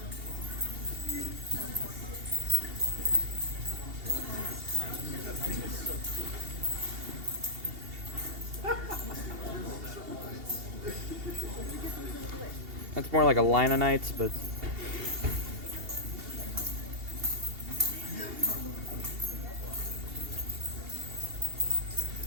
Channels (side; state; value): left; late; 2.8 ms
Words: That's more like a line of knights, but